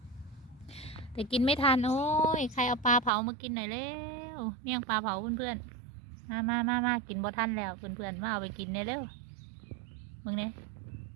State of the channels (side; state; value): left; drops out; at 3.1 s